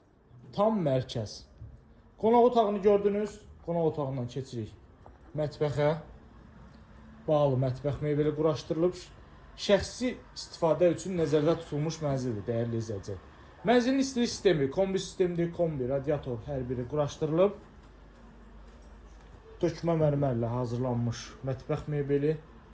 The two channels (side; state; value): both; identical; correlation 1.00